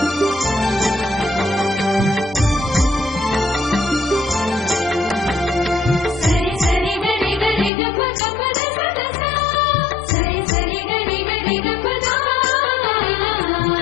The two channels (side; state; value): right; drops out; at 7.7 s